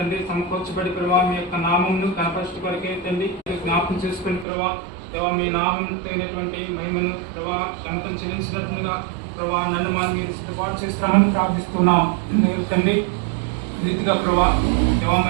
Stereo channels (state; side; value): drops out; left; at 4.5 s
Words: సమకూర్చబడి ప్రభా మీ యొక్క నామంను కనపరచు కొరకే తండ్రి జ్ఞాపకం చేసుకుని ప్రభా దేవా మీ నామం తగినటువంటి మహిమను ప్రభా గణతం చెల్లించినట్లుగా ప్రభా నన్ను మనం మీరు సిద్ధపాటు చేస్తామని ప్రార్థిస్తున్నాం తండ్రి. రీతిగా ప్రభా దేవా